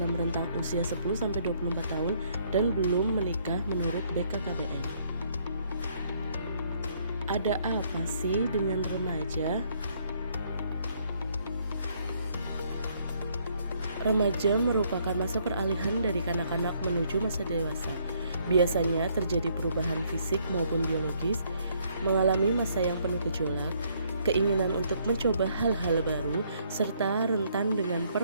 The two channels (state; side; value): inverted; both; correlation -0.68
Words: rentang usia 10-24 tahun dan belum menikah menurut BKKBN. Ada apa sih dengan remaja? Remaja merupakan masa peralihan dari kanak-kanak menuju masa dewasa. Biasanya terjadi perubahan fisik maupun biologis, mengalami masa yang penuh gejolak, keinginan untuk mencoba hal-hal baru, serta rentan dengan